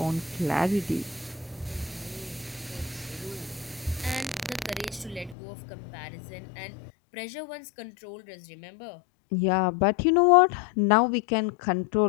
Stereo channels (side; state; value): right; drops out; at 5.4 s